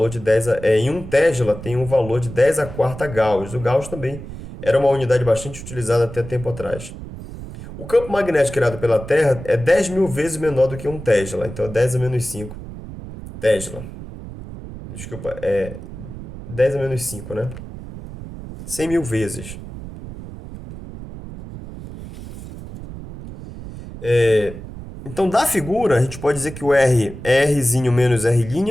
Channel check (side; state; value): right; noise; rumble, 12 dB below the sound